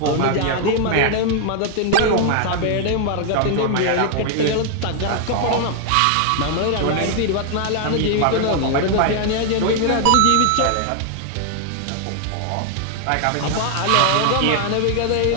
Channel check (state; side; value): different; both; correlation 0.00